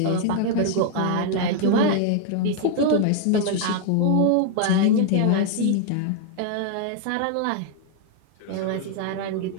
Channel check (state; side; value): different; both; correlation 0.00